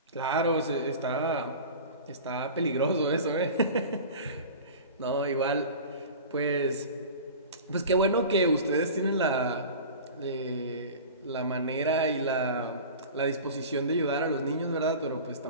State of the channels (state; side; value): inverted; both; correlation -0.36